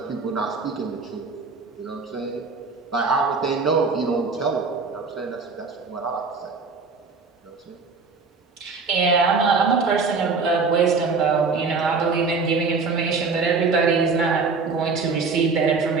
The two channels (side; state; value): left; quieter; 4.5 dB